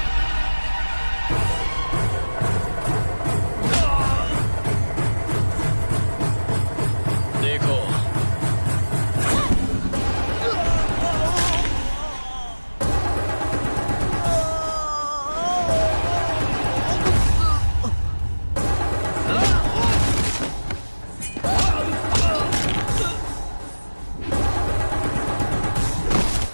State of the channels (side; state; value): both; inverted; correlation -1.00